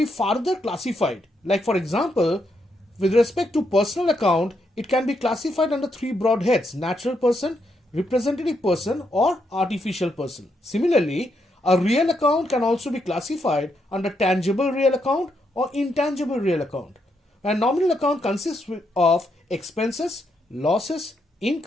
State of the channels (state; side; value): normal; both; correlation 0.79